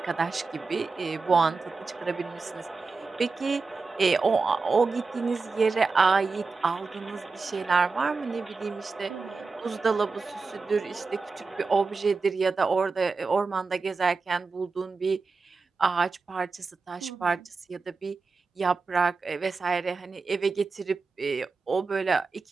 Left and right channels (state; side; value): quieter; left; 4.3 dB